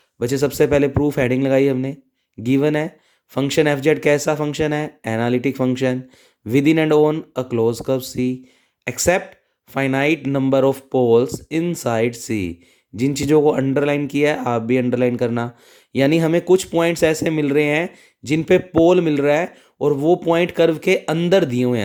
बच्चे सबसे पहले प्रूफ हेडिंग लगाई हमने, गिवन है फंक्शन एफ जेड कैसा फंक्शन है, analytic function, within and on a close curve C, except finite number of poles inside C. जिन चीज़ों को अंडरलाइन किया है आप भी अंडरलाइन करना, यानी हमें कुछ पॉइंट्स ऐसे मिल रहे हैं जिन पे पोल मिल रहा है और वो पॉइंट कर्व के अंदर दिए हुए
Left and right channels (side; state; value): both; identical; correlation 1.00